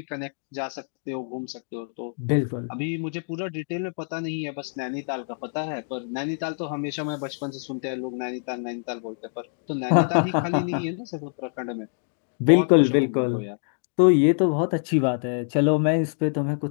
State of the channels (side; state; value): right; silent; digital silence